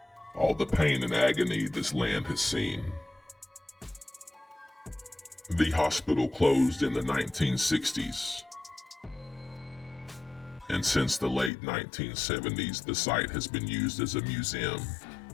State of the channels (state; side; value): drops out; right; at 11.5 s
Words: all the pain and agony this land has seen. The hospital closed in the 1960s, and since the late 1970s, the site has been used as a museum.